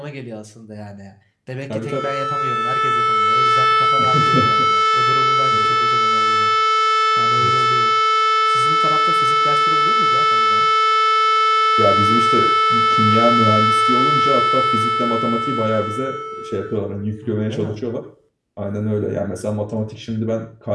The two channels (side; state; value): both; identical; correlation 1.00